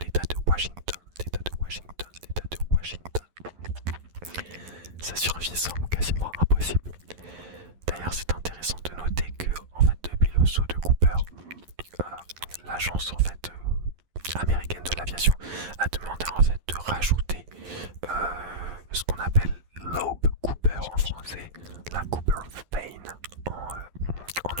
de Washington. Sa survie semble quasiment impossible. D'ailleurs, c'est intéressant de noter que, en fait, depuis le saut de Cooper, l'agence en fait américaine de l'aviation a demandé en fait de rajouter ce qu'on appelle Loeb Cooper en français, la Cooper Vane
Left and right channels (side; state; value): left; late; 11 ms